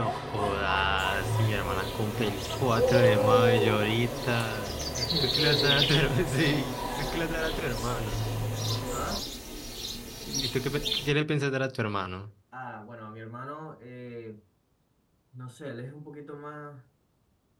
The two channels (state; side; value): identical; both; correlation 1.00